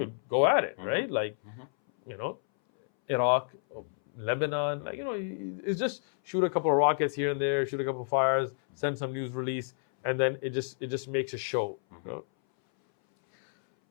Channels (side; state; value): right; silent; 58 dB below the other